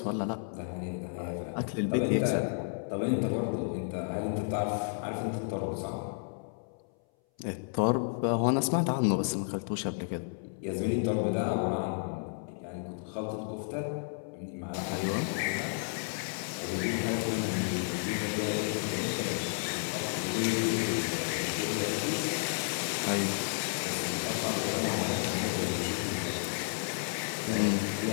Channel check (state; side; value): silent; right; 56 dB below the other